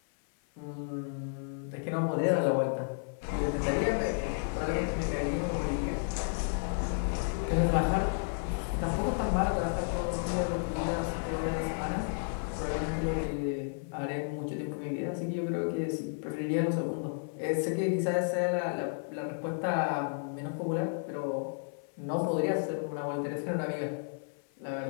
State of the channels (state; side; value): silent; right; 56 dB below the other